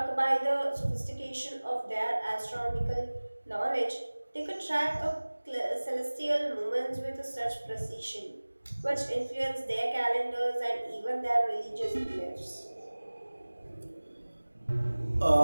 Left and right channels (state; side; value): inverted; both; correlation -1.00